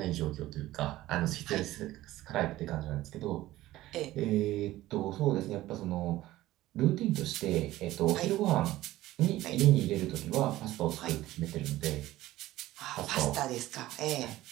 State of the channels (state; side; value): quieter; left; 16.0 dB